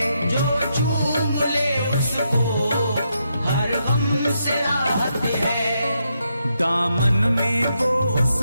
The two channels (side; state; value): both; inverted; correlation -0.81